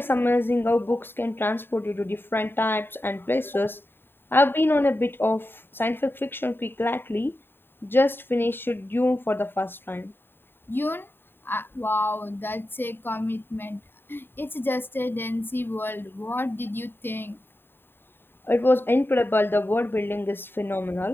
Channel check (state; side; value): late; right; 0.10 ms